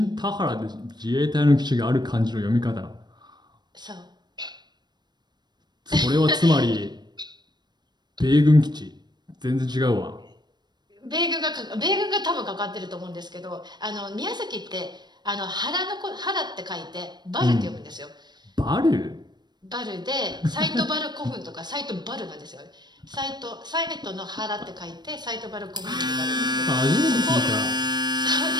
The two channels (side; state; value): left; late; 0.21 ms